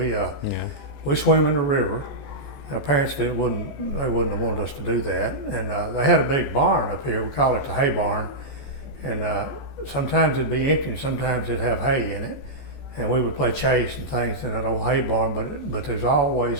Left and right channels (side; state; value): right; late; 14 ms